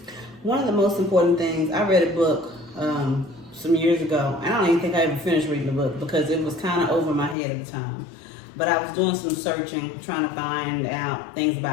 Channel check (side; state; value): right; drops out; at 7.4 s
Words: One of the most important things, I read a book some years ago, and I don't even think I ever finished reading the book because it was kind of over my head at the time. But I was doing some searching, trying to find out things